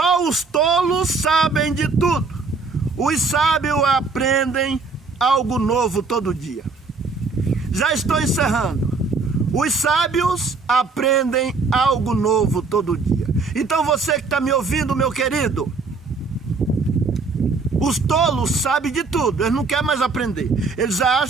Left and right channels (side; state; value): left; quieter; 4.2 dB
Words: os tolos sabem de tudo. Os sábios aprendem algo novo todo dia. Já estou encerrando. Os sábios aprendem algo novo todo dia. Então você que está me ouvindo, meu querido, os tolos sabem de tudo, eles não querem mais aprender. Eles